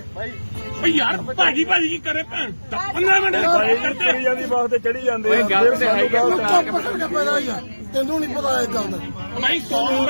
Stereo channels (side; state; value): both; inverted; correlation -1.00